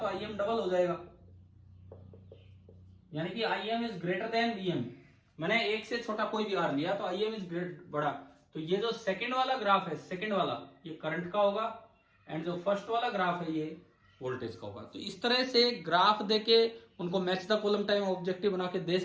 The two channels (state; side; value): identical; both; correlation 1.00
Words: आई एम डबल हो जाएगा, यानी कि I M is greater than V M. मैंने एक से छोटा कोई भी आर लिया तो आई एम इज ग्रेट बड़ा। तो ये जो सेकंड वाला ग्राफ है, सेकंड वाला, ये करंट का होगा, एंड जो फर्स्ट वाला ग्राफ है ये वोल्टेज का होगा। तो इस तरह से ग्राफ देके उनको match the column time objective बना के दे